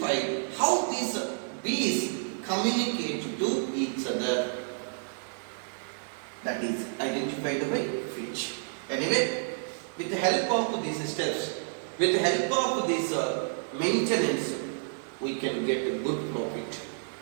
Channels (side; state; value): left; silent; digital silence